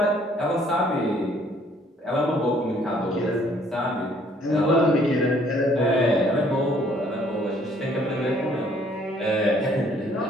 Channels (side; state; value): both; normal; correlation 0.62